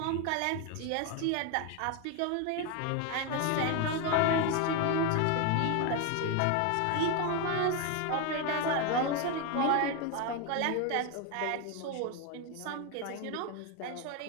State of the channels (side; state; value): both; different; correlation 0.01